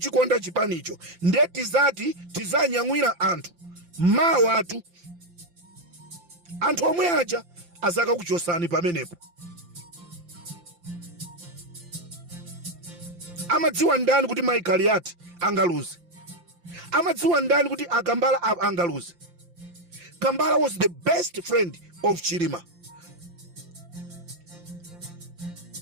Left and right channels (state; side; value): late; left; 5.8 ms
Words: chipanicho. Nde tizati tizanyamwira anthu mawa atu, anthu omwe aja azaka kuchosani pamenepo. Amadziwa ndani kuti Michael Yati angaluze? Amadziwa ndani kuti Akambala angaluze? Kambala was the best friend of Chilima.